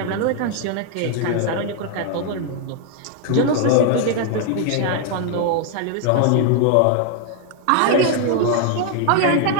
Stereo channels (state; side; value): different; both; correlation 0.00